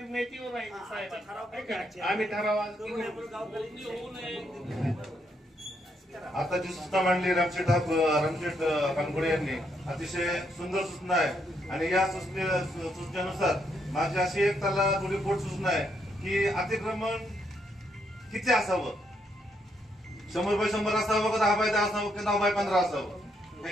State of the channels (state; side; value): normal; both; correlation 0.76